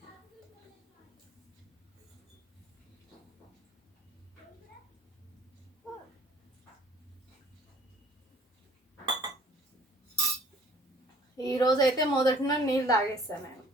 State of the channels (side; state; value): both; normal; correlation 0.54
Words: ఈరోజైతే మొదటిన నీళ్ళు తాగేస్తాను నేను,